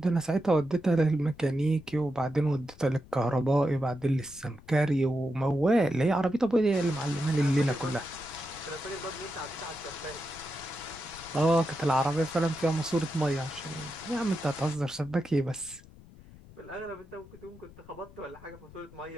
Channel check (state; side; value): noise; left; rumble, 21 dB below the sound